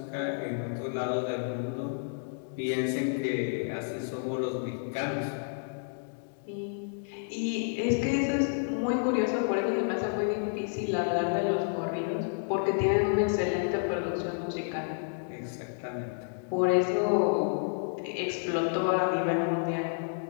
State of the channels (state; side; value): silent; right; digital silence